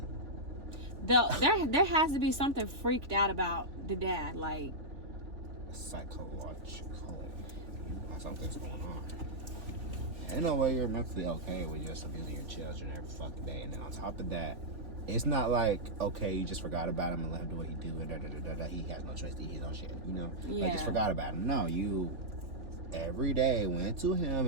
There has to be something freaked out about the dad, like psychologically. Something's going on. Ain't no way you're mentally okay with just abusing your children every fucking day. And then on top of that, it's not like, okay, you just forgot about him and let him do what he do and he has no choice to eat his own shit, you know? Yeah. Like, just forgot about him. No, you every day went to him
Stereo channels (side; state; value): left; late; 3.4 ms